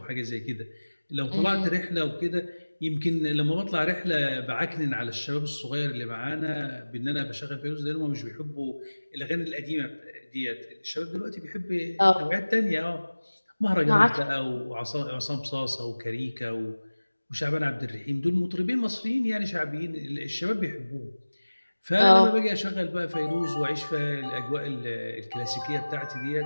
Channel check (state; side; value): inverted; both; correlation -1.00